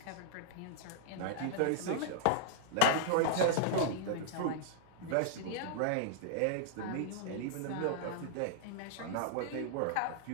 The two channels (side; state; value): both; different; correlation -0.01